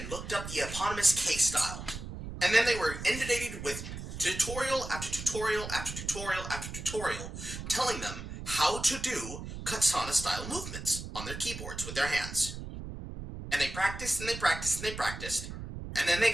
looked up the eponymous K-style. And then they were inundated with tutorial after tutorial after tutorial after tutorial telling them how to do katana-style movements on their keyboards with their hands. And they practiced and they practiced and they practiced, and then they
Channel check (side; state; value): right; noise; rumble, 9 dB below the sound